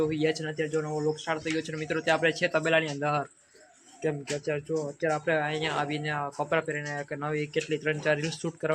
ગયા છે ને અત્યારે જો નવો વ્લોગ સ્ટાર્ટ થઈ ગયો છે મિત્રો. ત્યાં આપણે છે તબેલાની અંદર. કેમ કે અત્યારે આપણે અહીંયા આવીને કપડાં પહેરીને નવી કેટલી 3-4 રીલ્સ શૂટ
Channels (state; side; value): identical; both; correlation 1.00